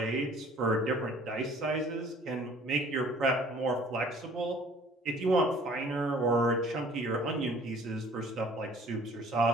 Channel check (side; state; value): both; normal; correlation 0.53